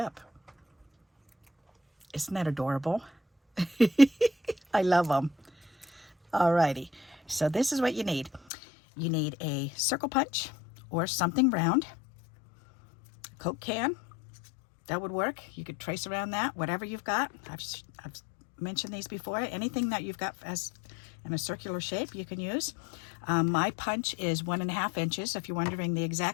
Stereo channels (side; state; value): right; drops out; at 8.4 s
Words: Isn't that adorable? I love them. Alrighty, so this is what you need. You need a circle punch or something round. Coke can, that would work. You could trace around that, whatever you've got. I've mentioned these before. Anything that you've got as in a circular shape you can use. My punch is 1.5 inches. If you're wondering the